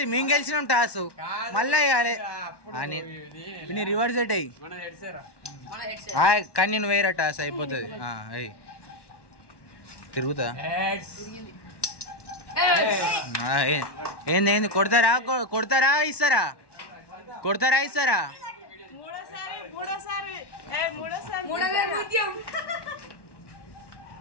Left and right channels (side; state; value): right; late; 1.1 ms